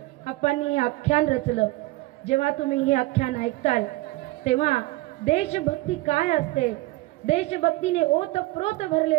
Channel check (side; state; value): left; quieter; 20.0 dB